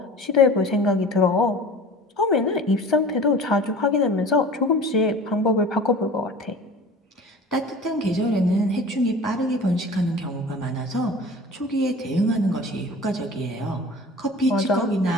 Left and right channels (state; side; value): normal; both; correlation 0.40